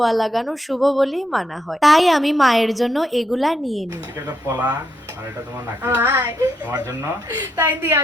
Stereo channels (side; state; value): both; normal; correlation 0.80